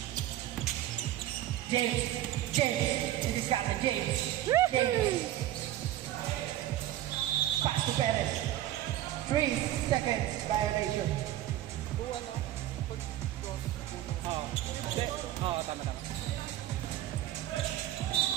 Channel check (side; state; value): left; quieter; 13.6 dB